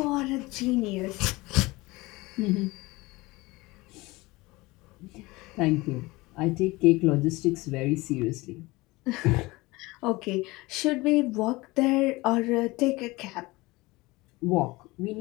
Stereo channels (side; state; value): right; quieter; 21.9 dB